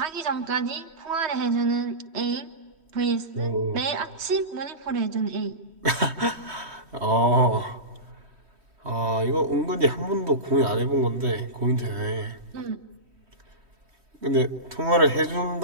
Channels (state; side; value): late; left; 3.1 ms